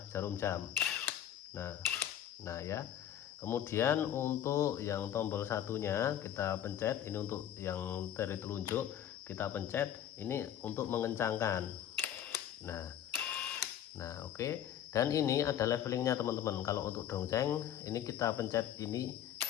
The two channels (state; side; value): quieter; right; 10.5 dB